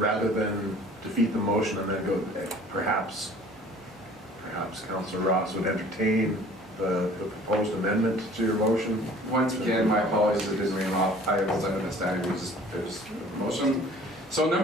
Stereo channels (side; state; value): both; normal; correlation 0.50